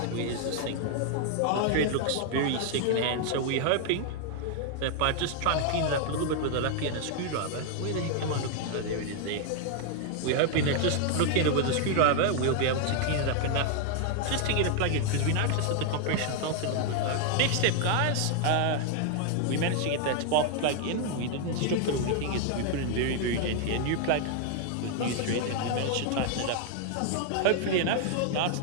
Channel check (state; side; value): different; both; correlation 0.00